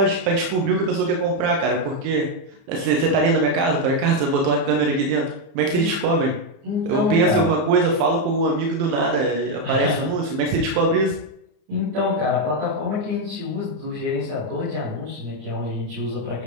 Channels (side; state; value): left; late; 30 ms